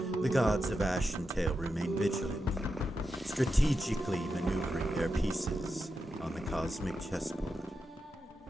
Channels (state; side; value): normal; both; correlation 0.88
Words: the gods of Ashentale remain vigilant, strategically maneuvering their pieces on the cosmic chessboard.